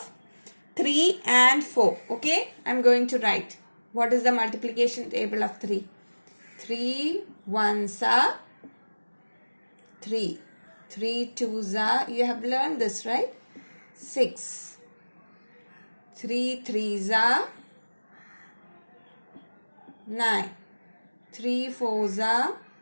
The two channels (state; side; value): inverted; both; correlation -1.00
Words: 3 and 4. Okay. I am going to write. What is the multiplication table of 3? 3 ones are 3. 3 twos are, you have learned this, right? 6. 3 threes are 9. 3 fours are